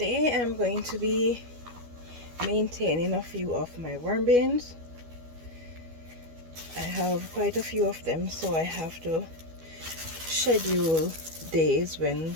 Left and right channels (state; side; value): late; left; 12 ms